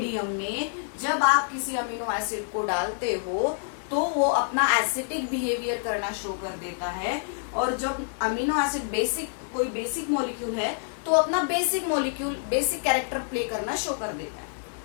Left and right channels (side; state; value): right; silent; digital silence